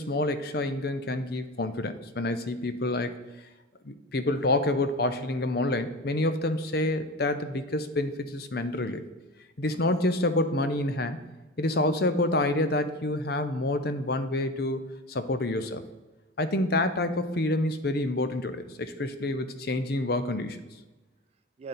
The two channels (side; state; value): both; normal; correlation 0.31